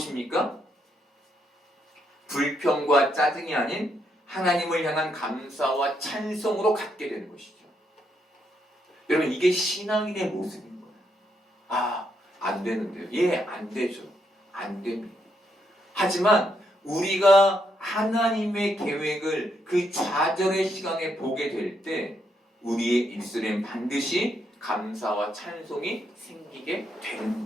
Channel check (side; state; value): both; normal; correlation 0.77